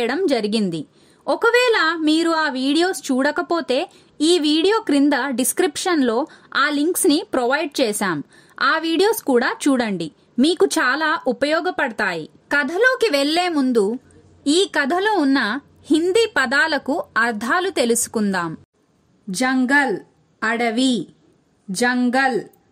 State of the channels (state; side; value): identical; both; correlation 1.00